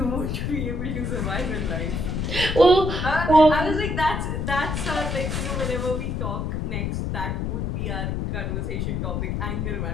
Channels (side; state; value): left; noise; rumble, 1 dB below the sound